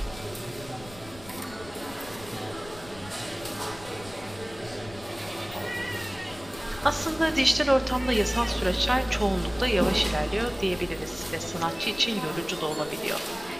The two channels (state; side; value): noise; left; rumble, 18 dB below the sound